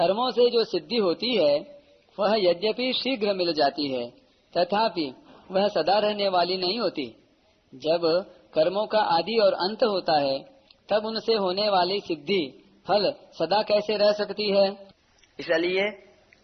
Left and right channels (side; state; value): both; identical; correlation 1.00